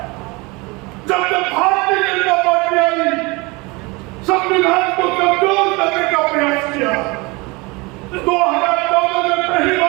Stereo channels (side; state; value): left; quieter; 25.6 dB